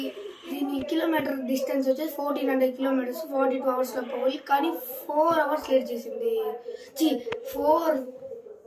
దీని కిలోమీటర్ డిస్టెన్స్ వచ్చేసి 1400 కిలోమీటర్స్, 42 అవర్స్లో పోవాలి. కానీ 4 అవర్స్ లేట్ చేసింది. 4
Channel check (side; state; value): both; identical; correlation 1.00